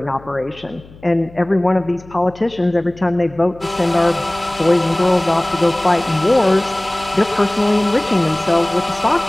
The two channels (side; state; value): left; noise; hum, 22 dB below the sound